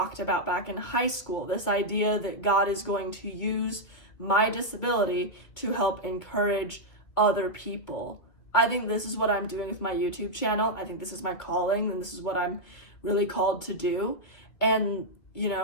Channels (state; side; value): late; right; 2.4 ms